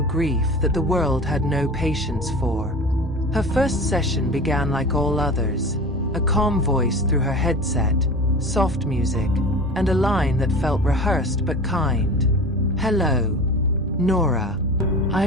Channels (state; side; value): normal; both; correlation 0.35